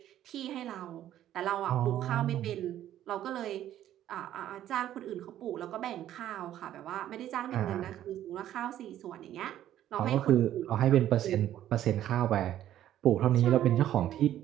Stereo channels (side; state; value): left; quieter; 12.1 dB